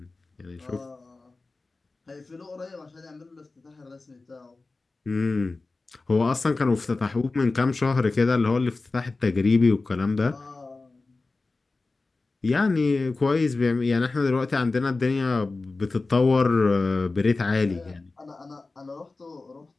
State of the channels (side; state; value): right; quieter; 3.5 dB